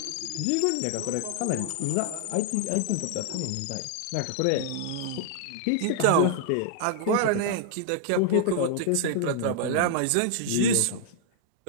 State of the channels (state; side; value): different; both; correlation -0.01